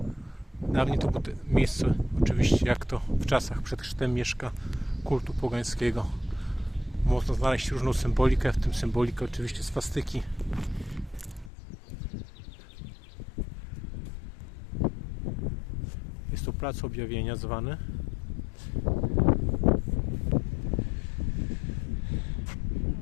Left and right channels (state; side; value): drops out; right; at 11.5 s